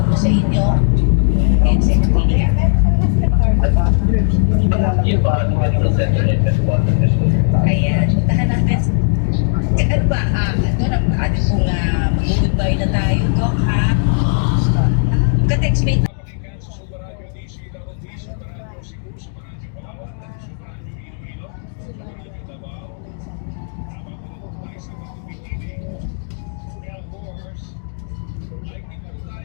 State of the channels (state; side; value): silent; right; digital silence